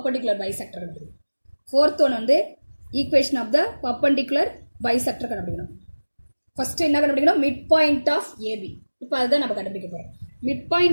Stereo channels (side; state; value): both; inverted; correlation -1.00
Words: bisector கண்டுபிடிக்கணும். ஃபோர்த் ஒன் வந்து equation of the perpendicular bisector கண்டுபிடிக்கணும். ஃபர்ஸ்ட் என்ன கண்டுபிடிக்கணும்? Midpoint of AB. இப்போ அதுதான் நம்ம கண்டுபிடிக்க போகிறோம். மிட்